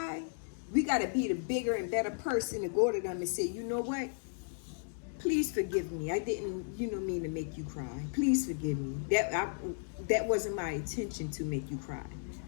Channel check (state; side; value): silent; right; digital silence